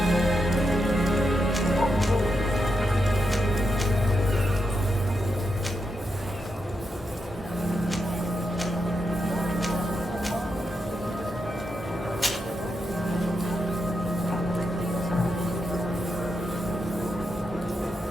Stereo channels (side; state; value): both; normal; correlation 0.85